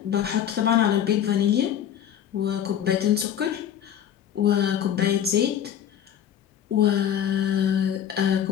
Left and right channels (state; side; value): quieter; right; 9.8 dB